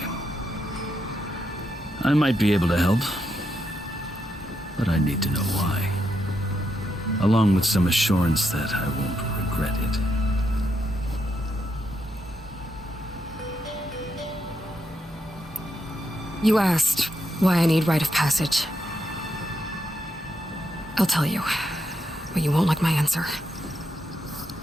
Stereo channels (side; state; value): both; normal; correlation 0.81